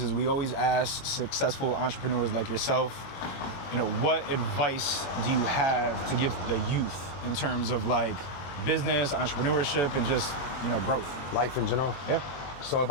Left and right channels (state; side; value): late; right; 22 ms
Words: is we always ask successful entrepreneurs like yourself, what advice do you have to give the youth in terms of like business, entrepreneurship, and just, growth? Life in general. Yeah. So if